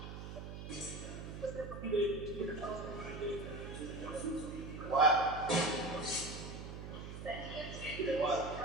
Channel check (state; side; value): noise; right; hum, 9 dB below the sound